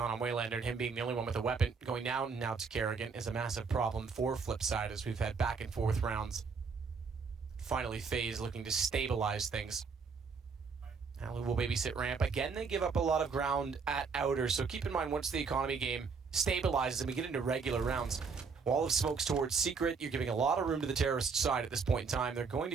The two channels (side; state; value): left; quieter; 5.2 dB